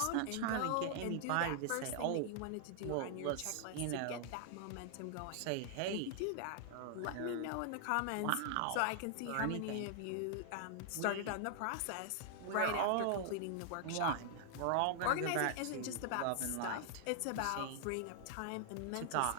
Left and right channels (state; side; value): different; both; correlation 0.00